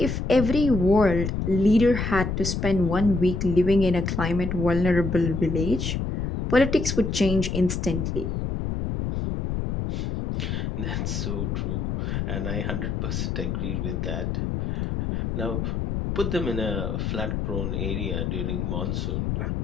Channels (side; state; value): left; noise; rumble, 2 dB below the sound